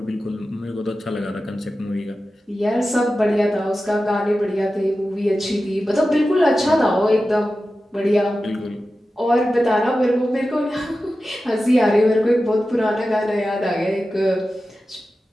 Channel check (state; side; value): normal; both; correlation 0.93